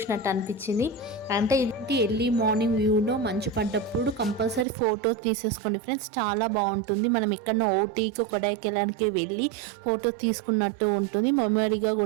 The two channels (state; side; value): drops out; left; at 4.7 s